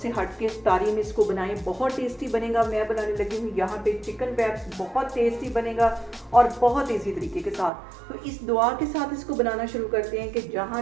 हट के इफ्तारी में इसको बनाएं, बहुत टेस्टी बनेगा। मैं बनाने लगी हूँ यहाँ पे चिकन रैप्स, बहुत टेस्टी बनेगा और बहुत ईजी तरीके के साथ। तो इस दुआ के साथ इसको बनाना शुरू करते हैं कि जहाँ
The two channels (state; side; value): drops out; left; at 7.7 s